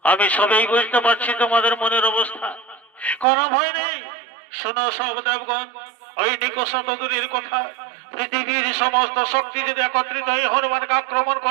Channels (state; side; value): drops out; left; at 3.2 s